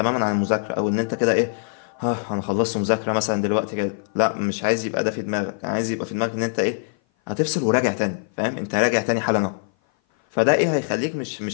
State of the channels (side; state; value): right; silent; 56 dB below the other